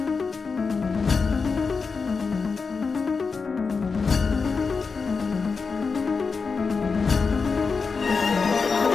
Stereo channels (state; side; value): quieter; right; 4.9 dB